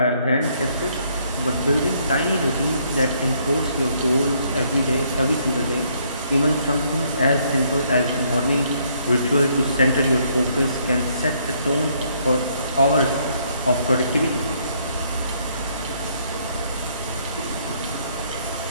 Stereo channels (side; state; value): both; inverted; correlation -0.69